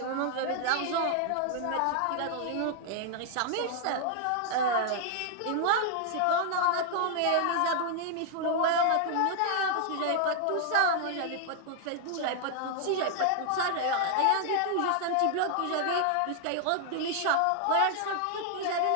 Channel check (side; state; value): both; different; correlation 0.00